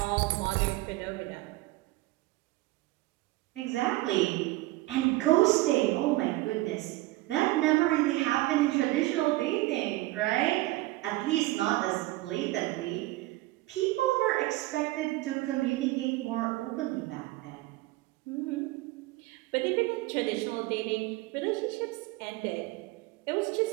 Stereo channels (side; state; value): left; quieter; 19.2 dB